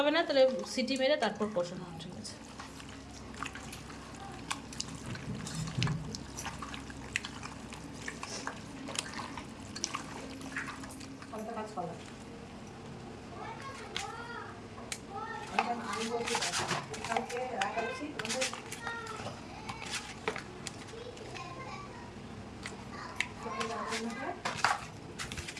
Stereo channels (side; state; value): both; identical; correlation 1.00